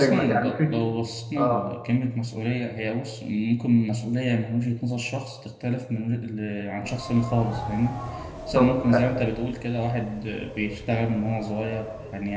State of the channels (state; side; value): identical; both; correlation 1.00